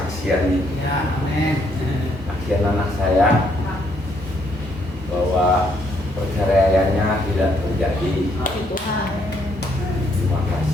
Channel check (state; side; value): normal; both; correlation 0.71